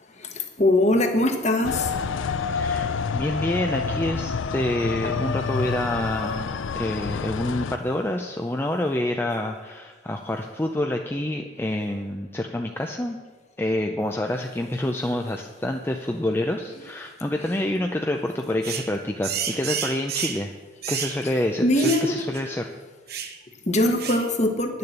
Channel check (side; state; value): both; normal; correlation 0.61